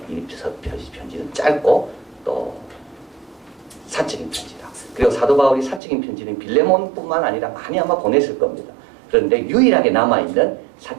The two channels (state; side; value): drops out; left; at 5.8 s